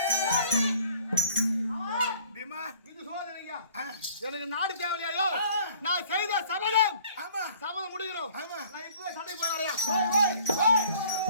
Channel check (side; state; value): both; inverted; correlation -0.53